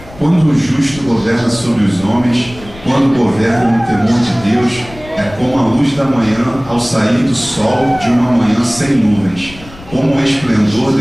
Quando o justo governa sobre os homens, quando governa no temor de Deus, é como a luz da manhã ao sair do sol de uma manhã sem nuvens, como o esplendor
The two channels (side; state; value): left; noise; rumble, 18 dB below the sound